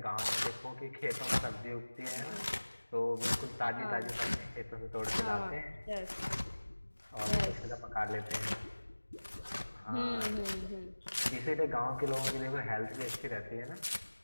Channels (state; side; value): inverted; both; correlation -1.00